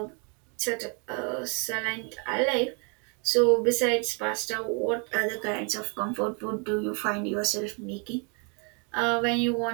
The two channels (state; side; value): quieter; left; 35.8 dB